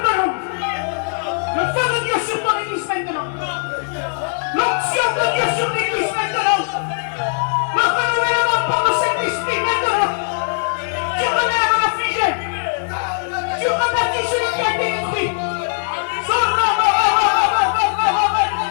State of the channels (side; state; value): right; silent; digital silence